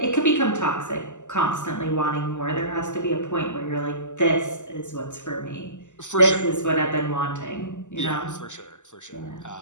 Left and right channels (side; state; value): right; late; 0.84 ms